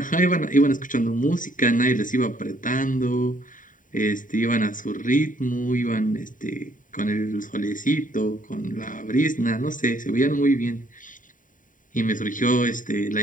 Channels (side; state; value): right; late; 0.38 ms